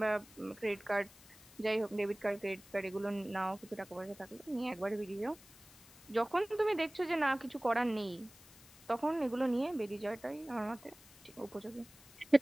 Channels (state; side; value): noise; left; hiss, 22 dB below the sound